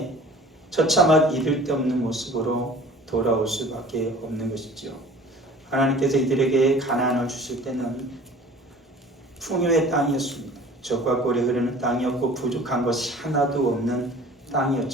이를 데 없는 모습으로 돌아올 수밖에 없는 것이지요. 하나님께서 이들에게 가나안을 주실 때는 풍요의 땅이었습니다. 젖과 꿀이 흐르는 땅이었고 부족한 것이 하나도 없는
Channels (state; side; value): normal; both; correlation 0.46